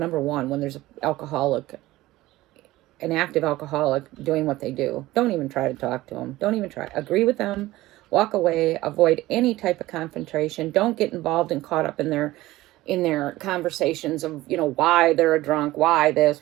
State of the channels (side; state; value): left; quieter; 17.4 dB